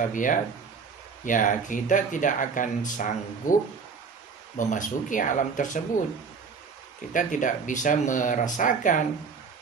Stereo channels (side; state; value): left; quieter; 5.5 dB